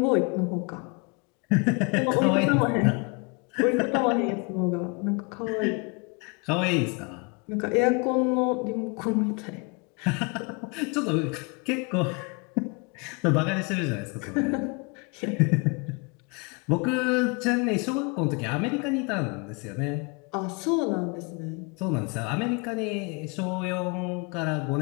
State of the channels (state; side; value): quieter; right; 31.3 dB